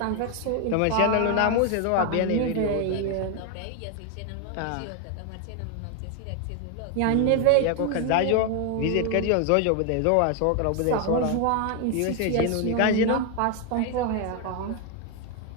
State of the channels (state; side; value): different; both; correlation 0.01